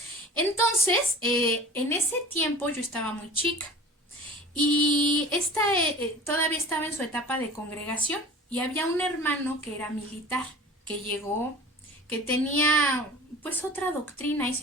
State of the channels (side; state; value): both; normal; correlation 0.41